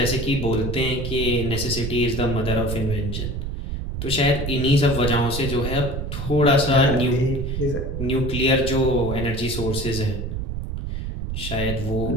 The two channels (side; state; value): right; noise; rumble, 4 dB below the sound